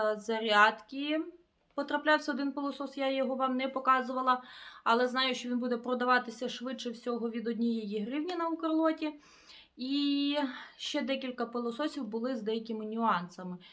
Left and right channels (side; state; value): both; identical; correlation 1.00